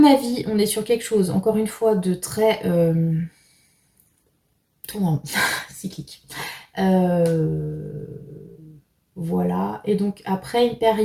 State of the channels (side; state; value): both; identical; correlation 1.00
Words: avis, on est sur quelque chose, encore une fois, de très tournant, cyclique. Voilà, et donc après une